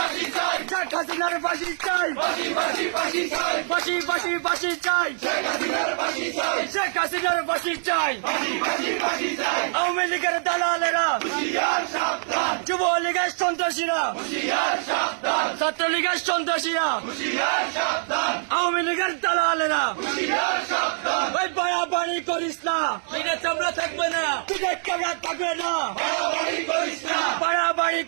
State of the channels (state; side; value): silent; left; 62 dB below the other